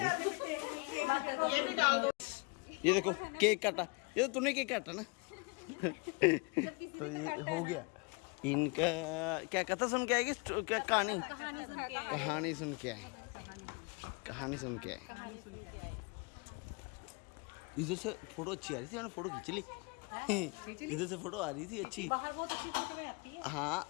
ये भी डाल दो ये देखो केक काटा ये तो तूने केक काटा ना तो ये हो गया इनका क्या कथा सुन के आएगी क्या कहानी सुन के आए कहानी सुन के आए इधर से फोटो अच्छी आ रही थी मैंने फोटो खींच ली इधर से फोटो आ रही थी अच्छी बाहर बहुत अच्छी फोटो में आती है हाँ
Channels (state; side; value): quieter; right; 30.4 dB